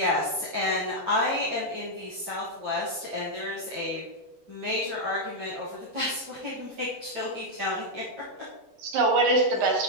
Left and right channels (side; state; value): left; late; 8.7 ms